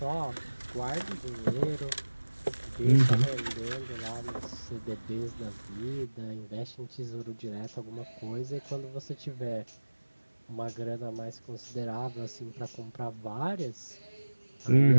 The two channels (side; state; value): both; inverted; correlation -1.00